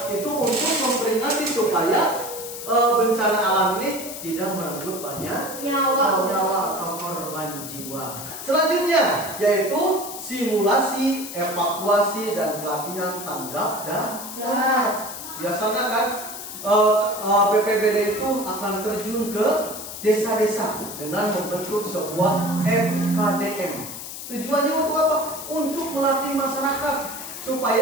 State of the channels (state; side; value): noise; left; hiss, 10 dB below the sound